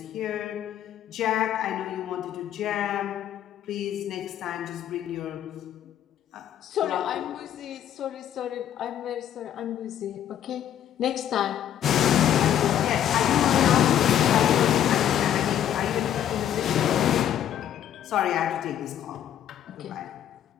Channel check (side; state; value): right; quieter; 10.5 dB